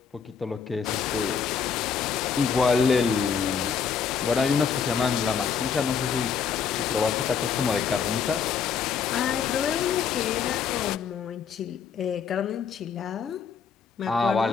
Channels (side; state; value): right; quieter; 6.6 dB